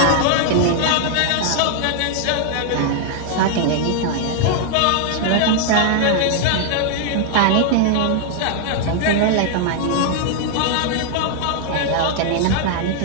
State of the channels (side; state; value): both; different; correlation 0.00